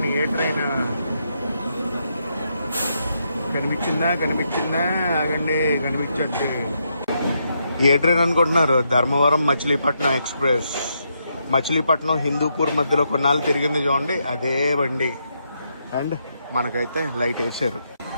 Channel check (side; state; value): both; inverted; correlation -0.80